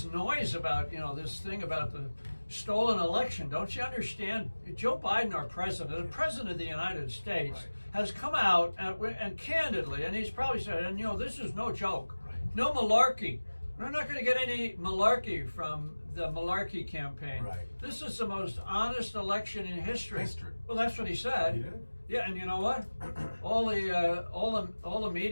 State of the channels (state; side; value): inverted; both; correlation -1.00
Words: noise about, this thing about the stolen election? Don't you understand? Joe Biden, our president, the president of the United States, Right. has come out and candidly, and he's probably said, and this is no joke, Right. no malarkey. We're not going to get any malarkey from the malarkey campaign. Right. This is the most honest election in history. History. Well, that's what he said. He did? Yeah, and you know what? all the